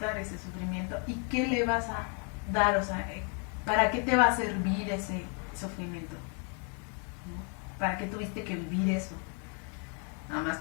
ese sufrimiento y qué le vas a dar, o sea, ¿para qué te va a servir ese sufrimiento? ¿No? ¿Para qué tuviste que vivir eso? Nada más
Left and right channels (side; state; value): right; quieter; 38.8 dB